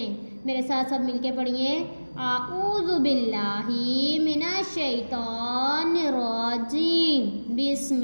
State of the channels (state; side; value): inverted; both; correlation -1.00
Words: میرے ساتھ سب مل کے پڑھیے۔ اعوذ باللہ من الشیطان الرجیم، بسم